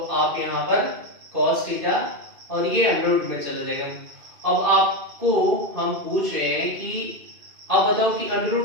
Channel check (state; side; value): late; left; 2.5 ms